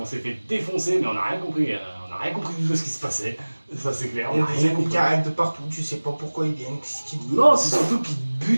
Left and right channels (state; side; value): inverted; both; correlation -1.00